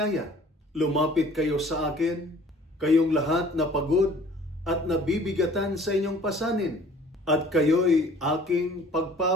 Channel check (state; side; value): normal; both; correlation 0.51